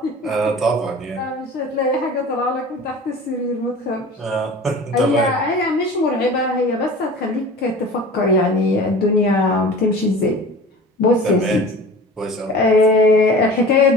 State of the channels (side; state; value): both; normal; correlation 0.39